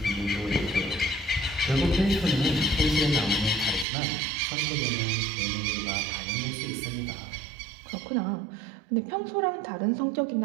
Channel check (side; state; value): left; drops out; at 3.9 s